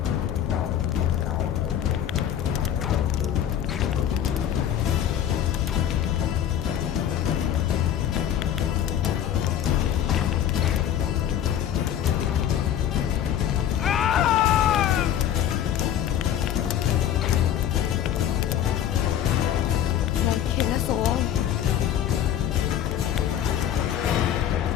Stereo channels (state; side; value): quieter; right; 10.3 dB